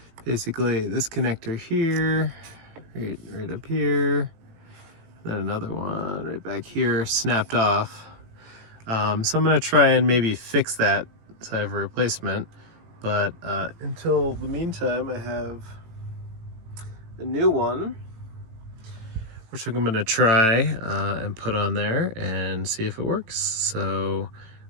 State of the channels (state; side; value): late; left; 18 ms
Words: basically this connector here, right up here, then another one right back here, snapped off. So I'm gonna try and maybe fix that so I have a replacement. But until the meantime, I have a new one, which I'm gonna try and put on there and see if it works. So